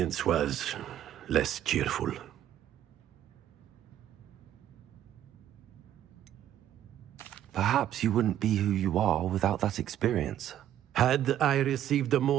was less cheerful. Perhaps you wouldn't be who you are without that experience. Had I received a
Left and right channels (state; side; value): quieter; left; 11.4 dB